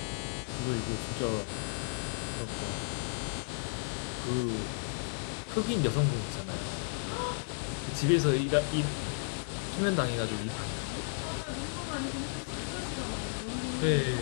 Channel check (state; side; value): silent; right; digital silence